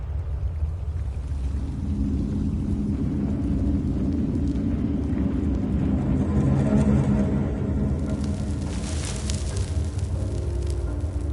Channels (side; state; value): both; identical; correlation 1.00